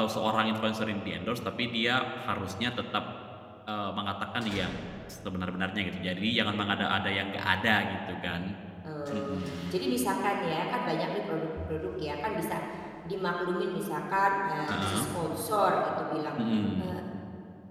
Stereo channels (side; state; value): both; identical; correlation 1.00